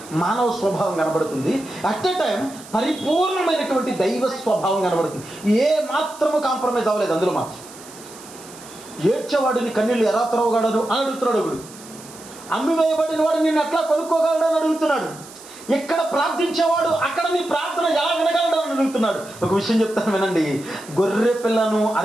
మానవ స్వభావం కనబడుతుంది. అట్ ఎ టైం పరిపూర్ణమైనటువంటి దైవ స్వభావం కనబడుతుంది. ఏ మాత్రము కాంప్రమైజ్ అవ్వలేదు అందులో మాత్రం. ఏడ్చేవాడిని కన్నీళ్ళు ఎలా త్రవగలడు అని అడుగుతున్నాడు ఒకడు. అమ్మివేయబడిన వాడు నిన్ను ఎట్లా కొనుక్కోగలడు అని అడుగుతున్నాడు. ఎక్కడ ప్రార్థించేవాడు అక్కడ నీ ప్రార్థన ఎలా వినగలడు అని అడుగుతున్నాడు. ఒక విషయం చెప్తాను వినండి. గొర్రె పిల్లను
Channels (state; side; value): noise; right; hiss, 19 dB below the sound